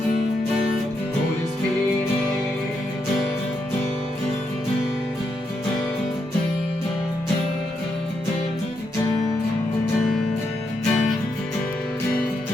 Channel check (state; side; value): normal; both; correlation 0.81